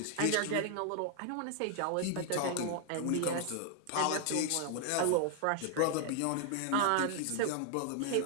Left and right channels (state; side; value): different; both; correlation 0.00